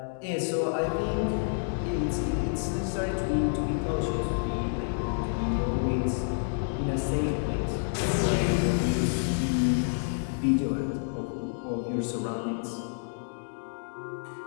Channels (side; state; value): right; silent; digital silence